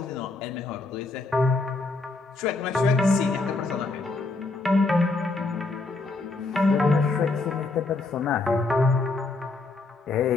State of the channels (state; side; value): quieter; right; 3.4 dB